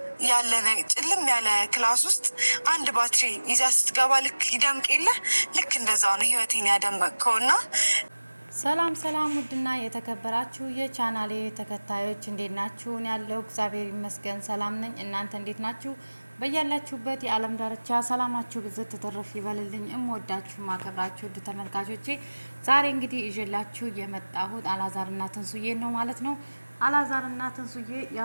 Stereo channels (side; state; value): both; inverted; correlation -1.00